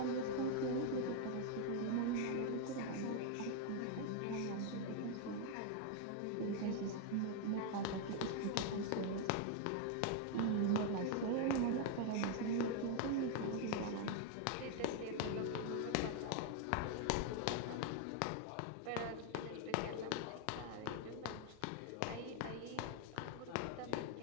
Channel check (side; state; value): both; different; correlation 0.00